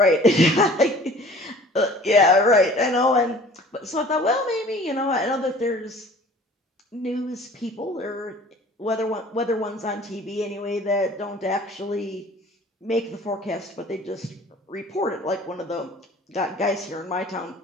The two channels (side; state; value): both; normal; correlation 0.48